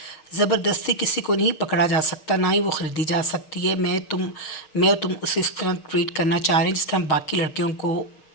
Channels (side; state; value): right; late; 6.4 ms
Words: زبردستی کسی کو نہیں پکڑا جا سکتا، نہ ہی وہ خریدی جا سکتی ہے. میں اور تم اسے اس طرح ٹریٹ کرنا چاہ رہے ہیں جس طرح باقی لڑکیوں کو